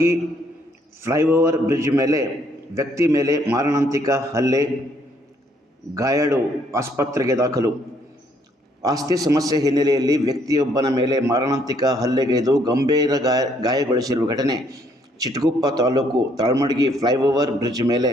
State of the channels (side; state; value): both; normal; correlation 0.67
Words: ಫ್ಲೈಓವರ್ ಬ್ರಿಡ್ಜ್ ಮೇಲೆ ವ್ಯಕ್ತಿ ಮೇಲೆ ಮಾರಣಾಂತಿಕ ಹಲ್ಲೆ, ಗಾಯಾಳು ಆಸ್ಪತ್ರೆಗೆ ದಾಖಲು. ಆಸ್ತಿ ಸಮಸ್ಯೆ ಹಿನ್ನೆಲೆಯಲ್ಲಿ ವ್ಯಕ್ತಿಯೊಬ್ಬನ ಮೇಲೆ ಮಾರಣಾಂತಿಕ ಹಲ್ಲೆಗೈದು ಗಂಭೀರ ಗಾಯಗೊಳಿಸಿರುವ ಘಟನೆ ಚಿಟಗುಪ್ಪ ತಾಲೂಕು ತಾಳ್ಮಡ್ಗಿ ಫ್ಲೈಓವರ್ ಬ್ರಿಡ್ಜ್ ಮೇಲೆ